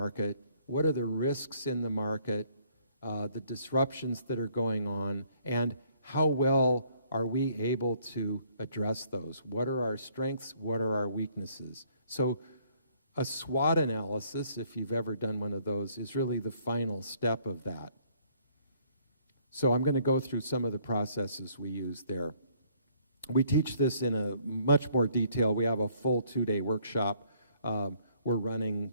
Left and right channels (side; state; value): both; inverted; correlation -0.64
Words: What are the risks in the market? The disruptions that are going on? And how well are we able to address those? What are our strengths? What are our weaknesses? So a SWOT analysis, if you've ever done one of those, is really the final step of that. So I'm going to go through some of the processes we use there. We teach this in a much more detail. We have a full 2-day workshop we're